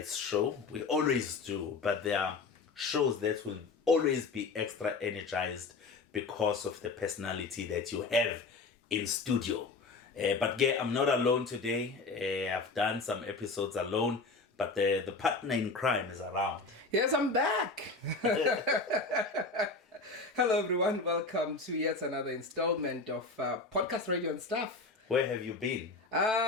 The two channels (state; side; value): quieter; right; 3.9 dB